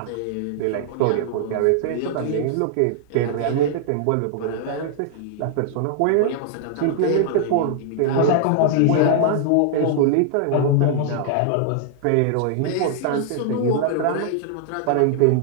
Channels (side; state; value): both; different; correlation -0.01